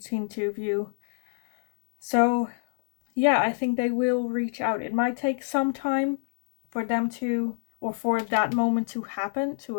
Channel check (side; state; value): right; silent; 61 dB below the other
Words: two of you. So yeah, I think they will reach out. It might take some time for them to, or for that moment to happen, to